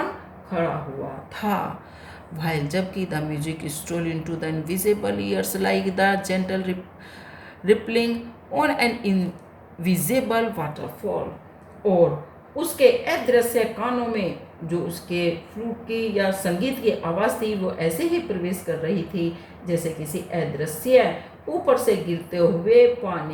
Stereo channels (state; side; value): identical; both; correlation 1.00